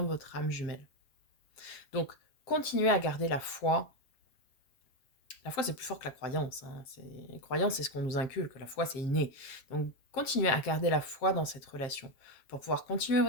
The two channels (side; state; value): right; late; 7.4 ms